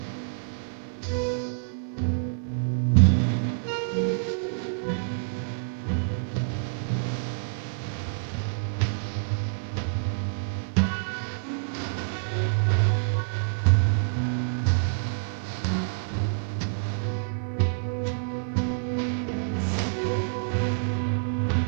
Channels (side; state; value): left; silent; digital silence